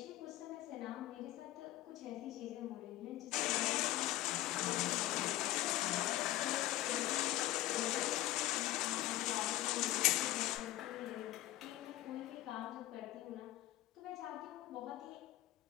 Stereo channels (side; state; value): right; quieter; 15.7 dB